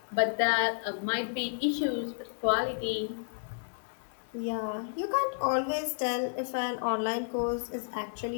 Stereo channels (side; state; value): right; silent; 57 dB below the other